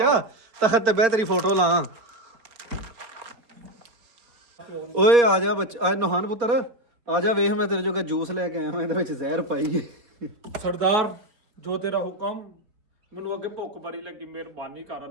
ਤਖਤ ਤੇ ਬਹਿ ਤੇਰੀ ਫੋਟੋ ਲਾ। ਓਏ ਆ ਜਾ ਬੱਚਾ, ਆ ਨਹਾਨ ਪੁੱਤਰ ਆ ਜਾ, ਵੇਖ ਮੈਂ ਤੇਰੇ ਜੋਗਾ ਜੂਸ ਲੈ ਕੇ ਆਇਆ ਮੈਂ, ਇਹਦੇ ਵਿੱਚ ਜ਼ਹਿਰ ਪਾਈ ਹੈ। ਸਰਦਾਰ ਜੋ ਤੇਰਾ ਹੁਕਮ। ਮੈਨੂੰ ਅੱਗੇ ਭੁੱਖ ਬੜੀ ਲੱਗੀ, ਮਿਹਰਬਾਨੀ ਕਰ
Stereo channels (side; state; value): left; late; 4.5 ms